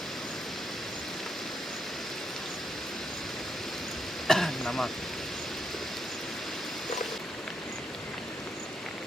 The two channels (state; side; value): normal; both; correlation 0.80